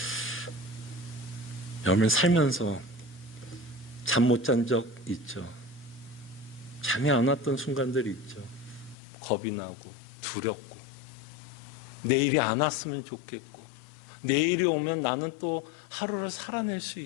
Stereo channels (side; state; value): right; drops out; at 9.0 s